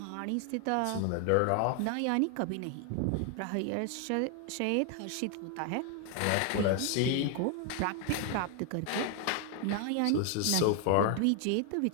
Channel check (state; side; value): different; both; correlation 0.01